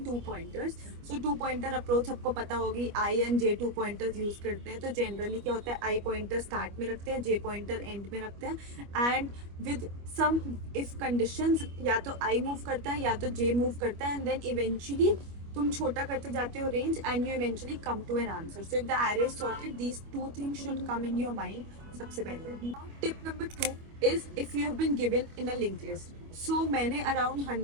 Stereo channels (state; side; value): late; left; 25 ms